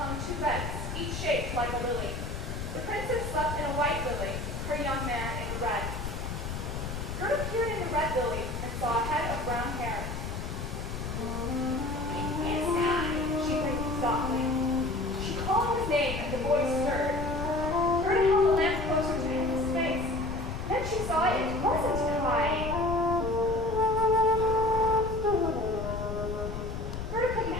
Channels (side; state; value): left; noise; rumble, 6 dB below the sound